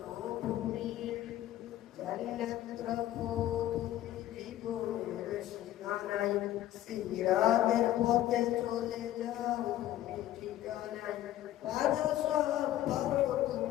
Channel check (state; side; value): quieter; right; 13.4 dB